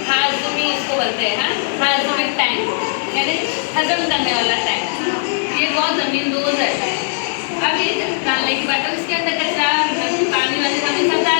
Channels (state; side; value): silent; right; digital silence